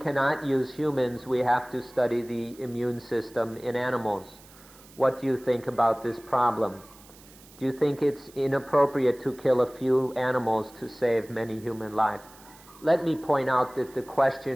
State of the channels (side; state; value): right; noise; hiss, 23 dB below the sound